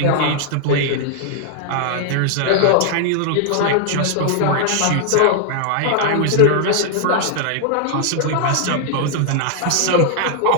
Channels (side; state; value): both; different; correlation -0.01